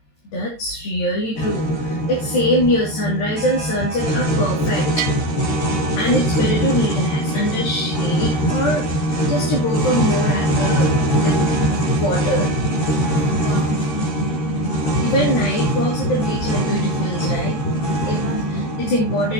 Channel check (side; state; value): right; late; 13 ms